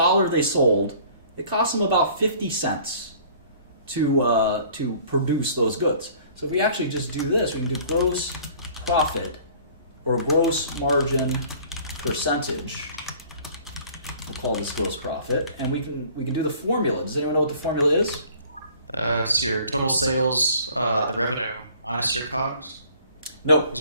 they sold, it cost them about 50 cents to produce those goods. So if we actually just do this, we can do gross profit or gross margin percentage. We'll call this gross profit, and we can do the formula. Does anyone know what the formula is? It's your total sales, the revenue minus your COGS. No.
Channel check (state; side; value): inverted; both; correlation -0.52